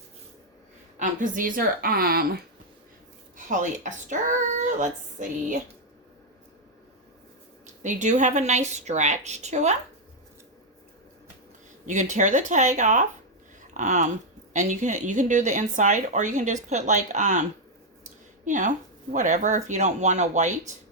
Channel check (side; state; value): both; normal; correlation 0.00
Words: Because these are polyester. Let's see. They do have a nice stretch to them. You can tear the tag off. And you can do the inside, or you can just put like you know, whatever. If you don't want a white,